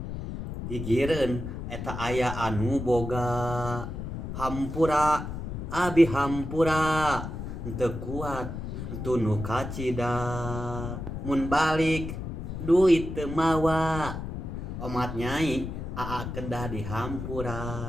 Gigireun eta aya anu boga. Hampura abi hampura teu kuat tunu kacida mun balik duit teu mawa omat nyai aa kedah di hampura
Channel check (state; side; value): noise; left; rumble, 6 dB below the sound